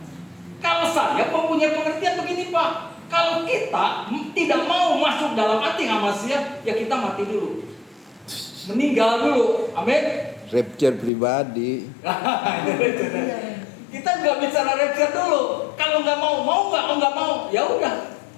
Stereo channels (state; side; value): drops out; right; at 11.1 s